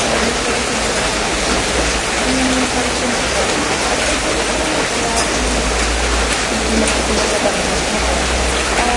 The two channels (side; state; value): both; identical; correlation 1.00